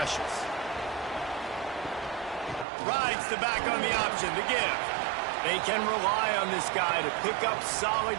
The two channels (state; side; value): drops out; left; at 2.7 s